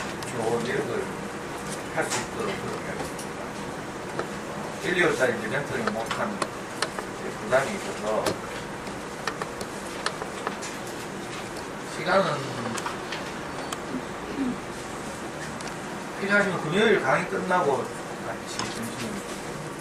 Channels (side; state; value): both; identical; correlation 1.00